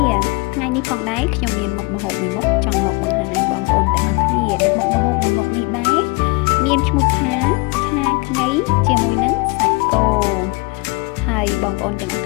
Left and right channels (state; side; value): quieter; right; 26.1 dB